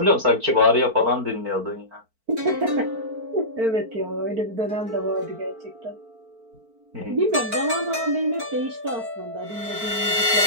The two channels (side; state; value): left; late; 4.5 ms